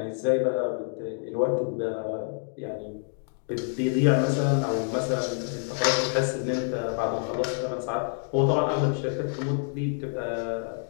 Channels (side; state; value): right; silent; 58 dB below the other